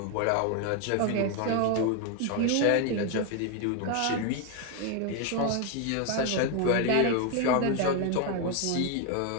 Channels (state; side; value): different; both; correlation 0.01